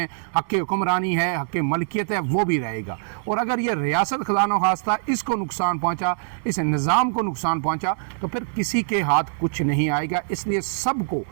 حق حکمرانی ہے، حق ملکیت ہے، وہ بھی رہے گا۔ اور اگر یہ ریاست خدا نخواستہ اس کو نقصان پہنچا، اس نظام کو نقصان پہنچا، تو پھر کسی کے ہاتھ کچھ نہیں آئے گا۔ اس لیے سب کو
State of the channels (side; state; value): left; silent; digital silence